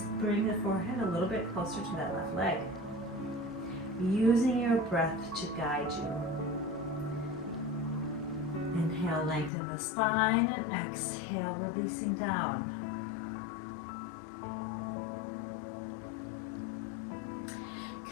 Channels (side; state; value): right; drops out; at 9.5 s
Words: bring the forehead a little bit closer to that left leg. Using your breath to guide you. Inhale, lengthen the spine, and exhale, releasing down.